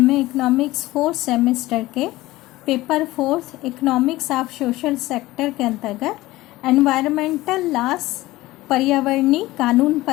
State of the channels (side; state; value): right; quieter; 18.0 dB